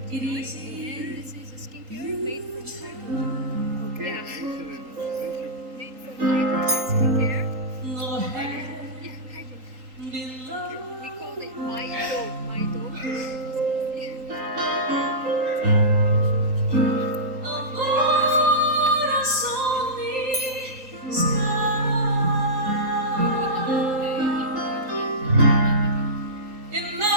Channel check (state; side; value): late; left; 3.8 ms